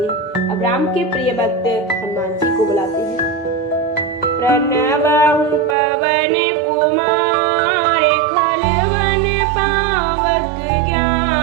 अब राम के प्रिय भक्त हनुमान जी को बुलाते हैं। प्रणवहु पवन कुमार खलवन पावक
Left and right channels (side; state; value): left; drops out; at 5.8 s